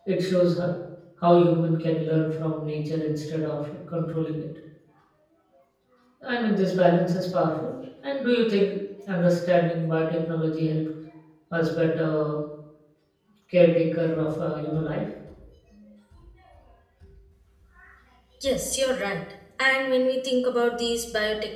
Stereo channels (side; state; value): both; identical; correlation 1.00